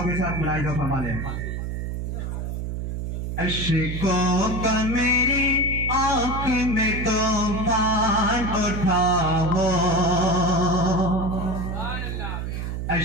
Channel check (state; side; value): noise; right; hum, 4 dB below the sound